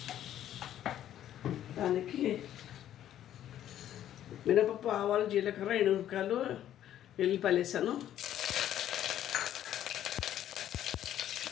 దానికి మినపప్పు, ఆవాలు, జీలకర్ర, ఎండుమిరపకాయలు, వెల్లిపాయలు వేసాను.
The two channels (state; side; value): quieter; right; 11.5 dB